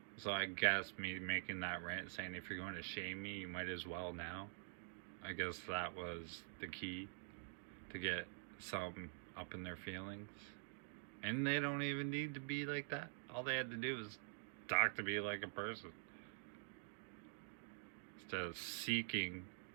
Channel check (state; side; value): silent; left; digital silence